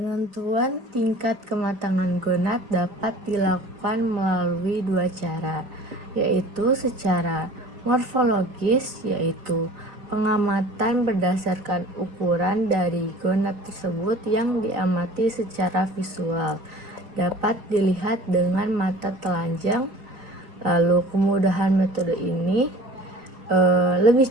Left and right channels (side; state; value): left; late; 4.2 ms